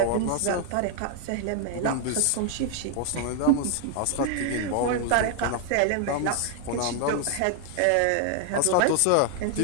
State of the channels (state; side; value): different; both; correlation 0.00